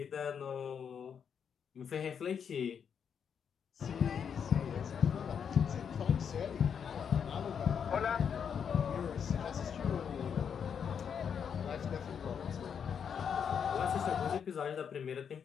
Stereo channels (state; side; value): quieter; right; 7.4 dB